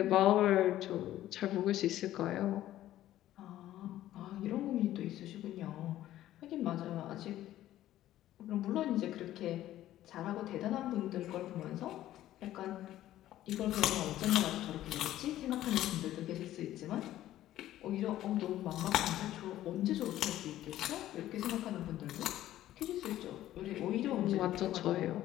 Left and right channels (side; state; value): right; quieter; 13.6 dB